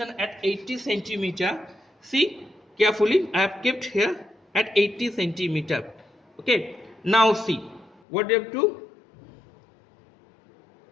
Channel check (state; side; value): drops out; right; at 8.0 s